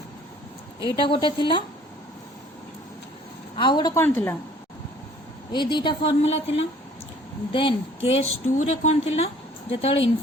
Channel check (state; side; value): normal; both; correlation 0.55